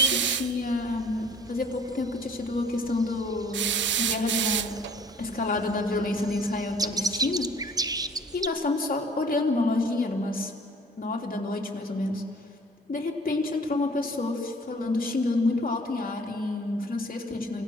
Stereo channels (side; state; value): both; normal; correlation 0.52